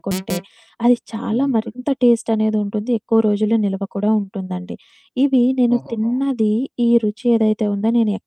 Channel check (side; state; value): both; identical; correlation 1.00